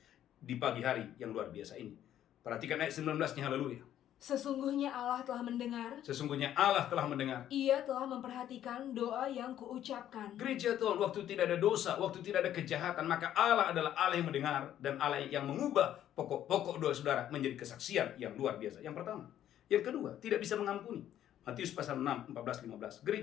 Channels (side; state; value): right; quieter; 11.3 dB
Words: di pagi hari yang luar biasa ini. Perhatikan ayat 19-nya, haleluya. Sesungguhnya Allah telah mendengar, Sesungguhnya Allah telah mendengar. Ia telah memperhatikan doa yang kuucapkan. Gereja Tuhan, waktu tidak ada dosa, waktu tidak ada kejahatan, maka Allah adalah Allah yang mendengar dan Allah yang mengubah pokok-pokok doa saudara menjadi kesaksian yang luar biasa. Yang pertama. Yang kedua, tidak bisa mengampuni. Matius pasal 6, 14-15.